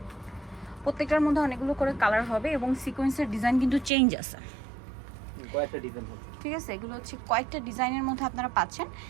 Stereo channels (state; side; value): drops out; left; at 3.9 s